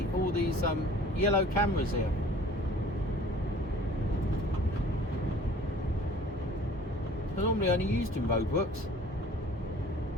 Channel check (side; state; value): both; normal; correlation 0.49